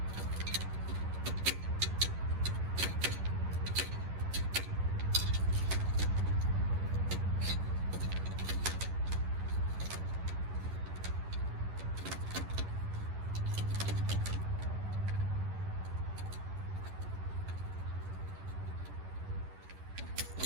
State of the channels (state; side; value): late; left; 11 ms